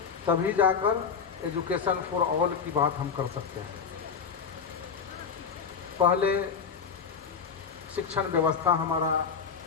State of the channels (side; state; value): right; quieter; 6.2 dB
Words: तभी जाकर एजुकेशन फॉर ऑल की बात हम कर सकते हैं। पहले शिक्षण व्यवस्था हमारा